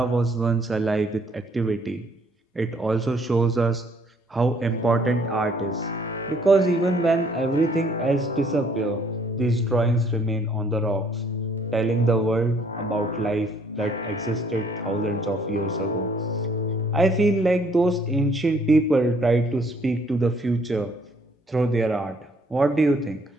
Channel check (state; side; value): normal; both; correlation 0.63